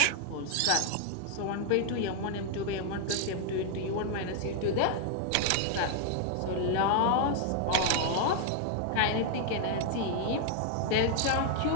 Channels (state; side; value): different; both; correlation 0.00